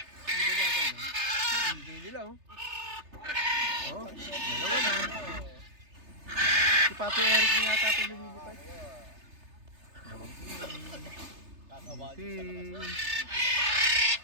Hindi ba natin, no? Hindi nila, oh. Oh, dalawa na. Si Papi Eric niya yata ito lumilipad.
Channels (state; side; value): late; left; 3.3 ms